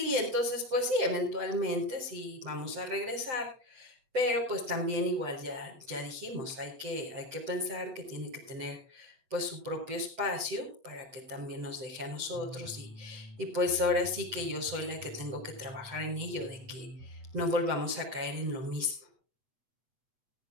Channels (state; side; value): late; left; 7.8 ms